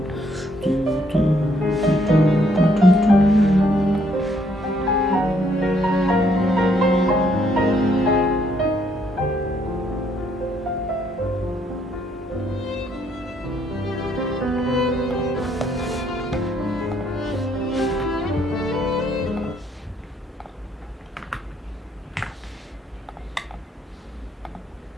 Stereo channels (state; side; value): normal; both; correlation 0.70